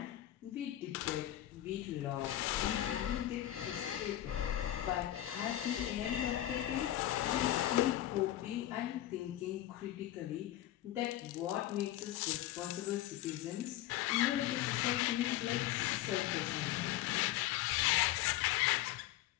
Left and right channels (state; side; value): quieter; right; 13.8 dB